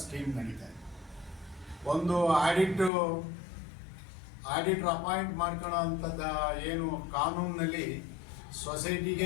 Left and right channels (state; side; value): drops out; right; at 2.9 s